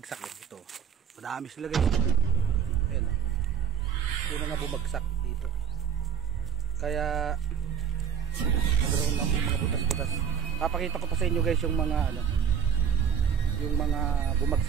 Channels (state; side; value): quieter; left; 6.8 dB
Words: dito. Madami sila guys. Ayan. Yung mga bumagsak dito. Kaya nagkaroon ng mga butas-butas. Papakita ko pa sa inyo guys yung mga yung mga